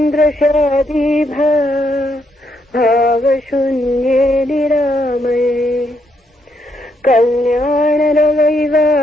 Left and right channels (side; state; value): both; normal; correlation 0.76